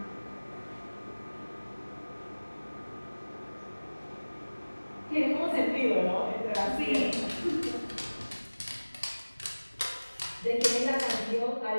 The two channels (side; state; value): both; inverted; correlation -1.00